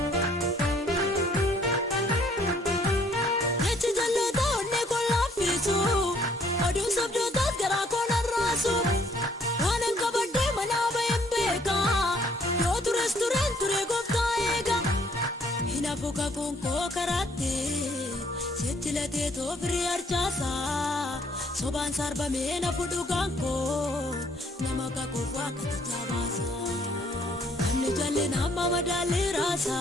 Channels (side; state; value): both; normal; correlation 0.64